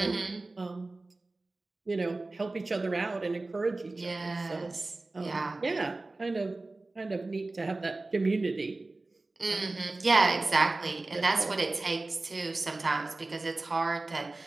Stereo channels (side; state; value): left; quieter; 3.2 dB